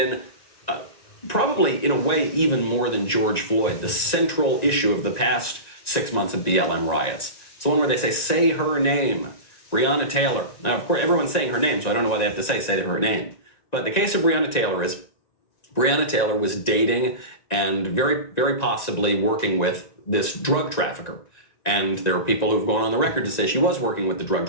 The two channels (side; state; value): right; late; 1.9 ms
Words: probably, in a way, even more than George Floyd, the central issue of the past 6 months of BLM riots. It's the one where they say her name. Breonna Taylor. Now, of course, everyone's saying her name, so I don't know why they have to say her name. But the case of Breonna Taylor is Breonna Taylor was dating and very, very possibly working with this drug trafficker. And there are people who've gone on the record to say she was working with the drug